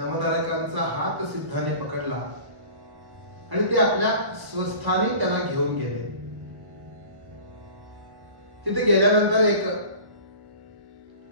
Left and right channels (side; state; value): left; late; 1.3 ms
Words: हात सिद्धाने पकडला आणि ते आपल्या स्वस्थानी त्याला घेऊन गेले. तिथे गेल्यानंतर एक